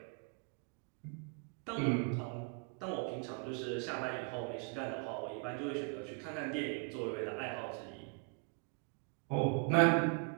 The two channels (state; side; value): quieter; left; 38.3 dB